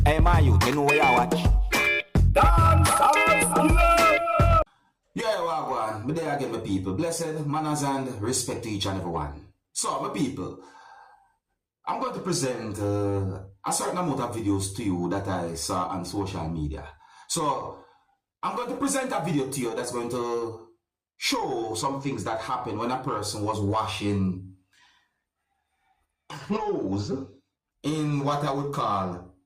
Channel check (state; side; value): identical; both; correlation 1.00